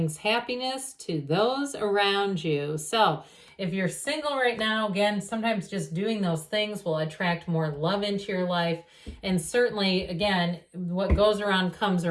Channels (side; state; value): both; identical; correlation 1.00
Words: happiness to those around you. So if you're single right now, again, sometimes just doing those things will attract more love into your life. And certainly, again, what goes around comes